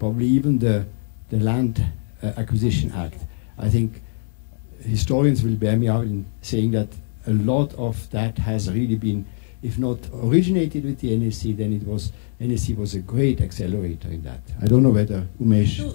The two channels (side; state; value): right; silent; digital silence